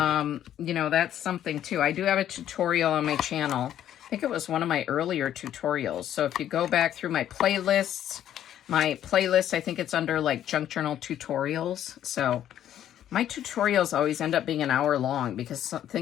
know, that's something too. I do have a tutorial on my channel. I think it was one of my earlier tutorials. So if you go back through my playlist, I think it's under like junk journal tutorials. So my tutorials always end up being an hour long because some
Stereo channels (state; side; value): quieter; right; 11.1 dB